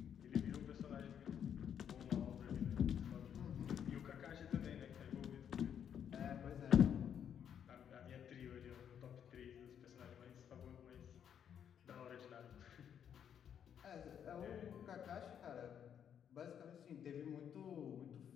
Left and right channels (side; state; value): right; quieter; 8.6 dB